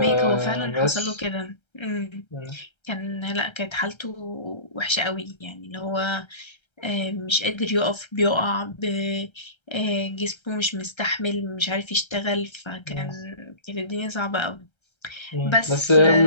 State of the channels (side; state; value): right; late; 1.3 ms